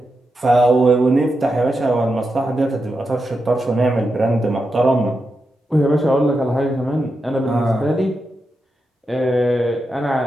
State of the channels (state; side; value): normal; both; correlation 0.87